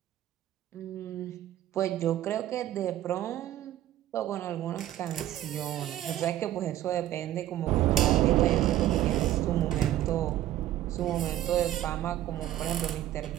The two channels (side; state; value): left; quieter; 13.3 dB